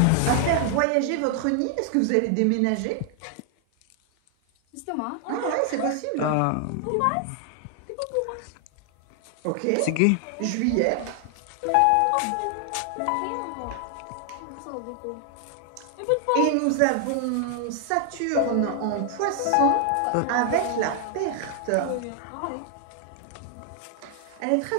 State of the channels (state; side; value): different; both; correlation 0.00